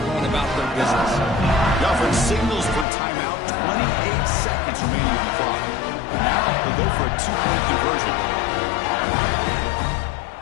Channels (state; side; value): drops out; right; at 2.9 s